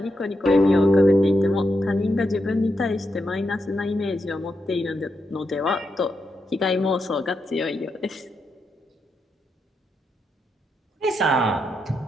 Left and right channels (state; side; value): normal; both; correlation 0.84